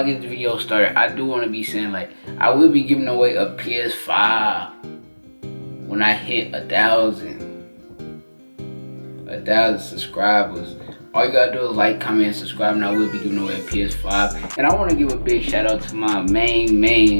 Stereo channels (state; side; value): inverted; both; correlation -1.00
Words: get the video started, I do want to be saying, like, I will be giving away a PS5 when I hit 1,000 subscribers. All you gotta do is like, comment, and subscribe, and I will be giving away a PS5. And I want to give a big shout out to my main